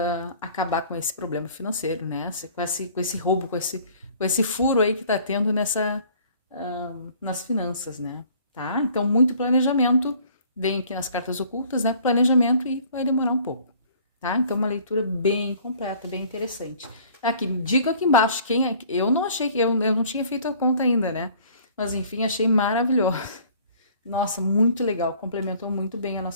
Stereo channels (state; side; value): inverted; both; correlation -0.54